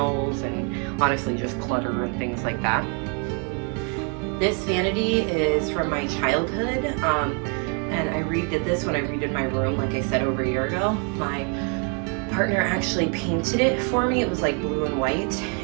and honestly just clutter and things like that. This vanity is from my childhood, and I redid this when I redid my room, like I said, over a year ago. My partner actually painted it for me. It was like blue and white,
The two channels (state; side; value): quieter; left; 38.0 dB